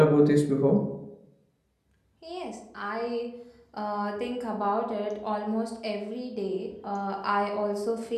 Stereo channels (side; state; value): both; identical; correlation 1.00